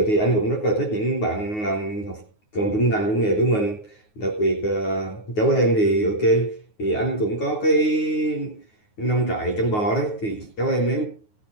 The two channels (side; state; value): right; late; 9.5 ms